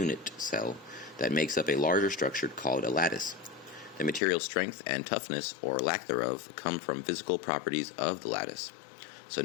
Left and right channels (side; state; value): right; drops out; at 4.2 s